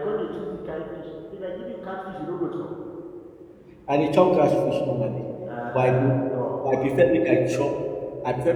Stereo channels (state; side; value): identical; both; correlation 1.00